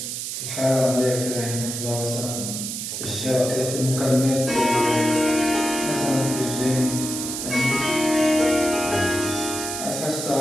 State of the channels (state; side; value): noise; right; hiss, 5 dB below the sound